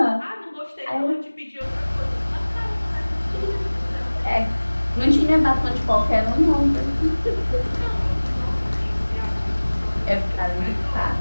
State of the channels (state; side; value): inverted; both; correlation -1.00